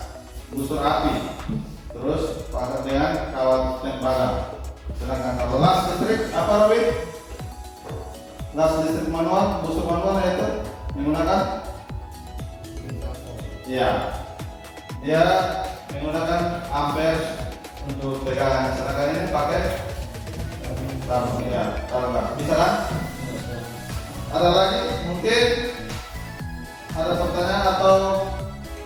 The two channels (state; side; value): identical; both; correlation 1.00